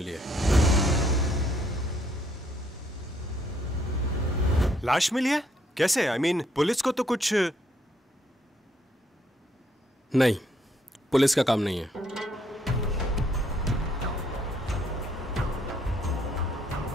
है। लाश मिली है? कैसे? I mean, पुलिस को तो कुछ नहीं, पुलिस का काम नहीं है।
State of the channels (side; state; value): both; normal; correlation 0.69